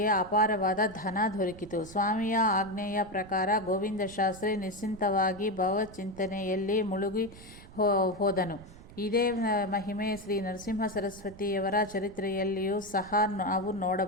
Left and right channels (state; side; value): noise; right; rumble, 19 dB below the sound